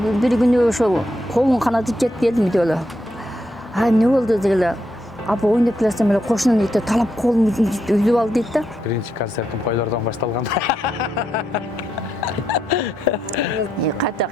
Bir günü ошол колун канатып жетип келдим үйдө эле. Эмне болду дегеле. Апа ойноп келсем эле кошунун ите талап колумду үзүп алды дейт да. Биринчи концертим койлордон башталган. Кайта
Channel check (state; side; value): normal; both; correlation 0.81